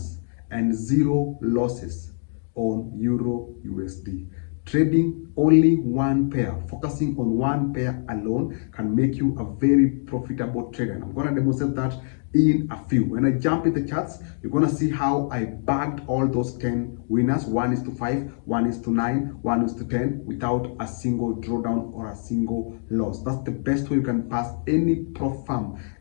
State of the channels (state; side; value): silent; right; digital silence